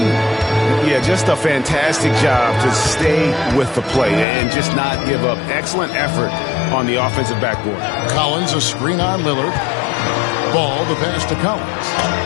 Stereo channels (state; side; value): drops out; right; at 4.2 s